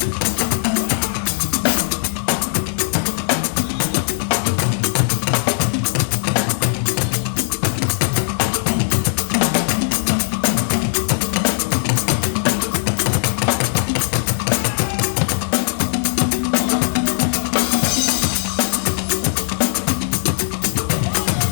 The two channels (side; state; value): right; silent; 66 dB below the other